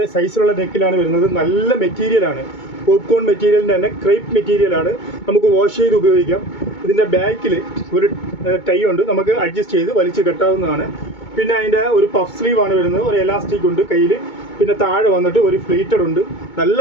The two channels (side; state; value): right; late; 2.2 ms